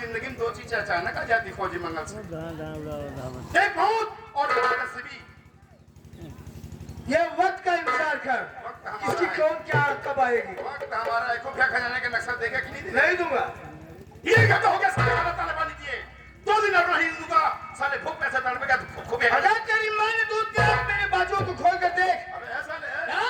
में दो चीजें अचानक आ जाती फौजी मंगल सिंह, एक मौत और एक नसीबी। ये वक्त का इंतजार कर, इसकी कौन क्या कब आएगी। वक्त हमारा है। खुफिया खजाने का नक्शा देगा कि नहीं देगा? नहीं दूंगा। ये क्या हो गया? साले खाना ताले पानी दिए 2 दिन और नहीं दूंगा। साले भूख पैसे तड़पेगा तो खुफिया अगर तेरी माँ ने दूध दिया, मेरे बाजुओं को खोल कर देख। अबे ऐसा ले,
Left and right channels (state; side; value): identical; both; correlation 1.00